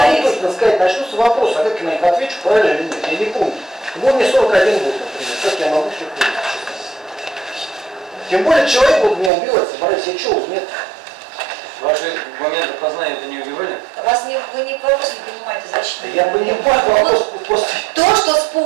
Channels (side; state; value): left; drops out; at 9.3 s